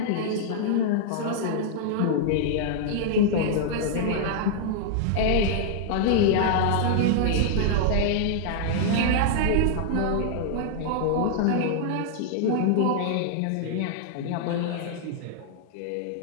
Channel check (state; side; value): different; both; correlation -0.01